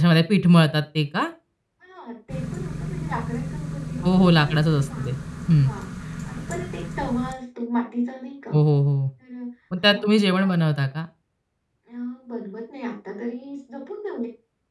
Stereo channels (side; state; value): both; identical; correlation 1.00